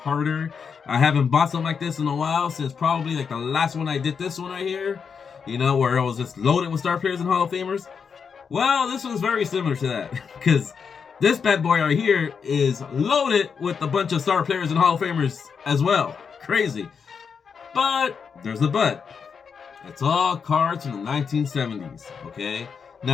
I haven't bought something like this in a while, since probably like the last one I did, this one right here, you know, where it was just loaded with star players and Hall of Famers. Well, this one's very similar to that, because this bad boy right here is loaded with a bunch of star players and Hall of Famers as well. Crazy. But there's a but. It's all cards from the 1970s, okay?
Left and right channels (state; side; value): quieter; right; 6.2 dB